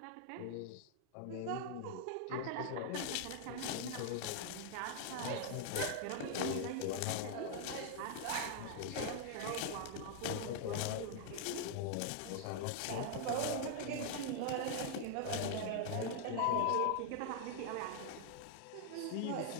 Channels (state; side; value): different; both; correlation -0.01